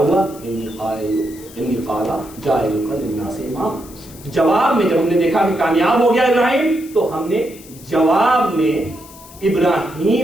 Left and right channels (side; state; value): left; noise; hiss, 20 dB below the sound